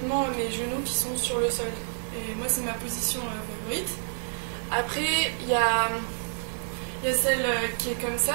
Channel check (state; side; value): silent; left; digital silence